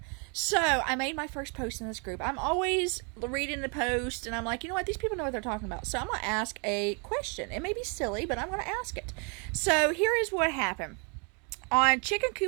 So I made my first post in this group. I'm always reading the post and I'm like, you know what? These people know what they're talking about. So I'm going to ask a question. It may be silly, but I'm going to ask it. So here is what happened. On chicken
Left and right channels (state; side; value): quieter; left; 35.6 dB